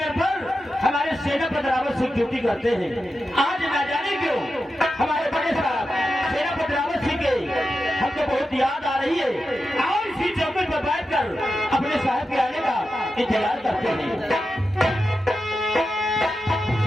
पर हमारे सेना पदरावत सिंह ड्यूटी करते हैं। आज ना जाने क्यों हमारे बड़े साहब सेना पदरावत सिंह के हमको बहुत याद आ रही है और इसी चौकी पर बैठकर अपने साहब के आने का इंतजार करते हैं।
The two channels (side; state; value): both; normal; correlation 0.90